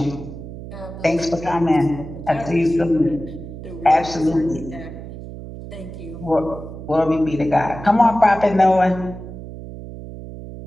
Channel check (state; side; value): noise; right; hum, 12 dB below the sound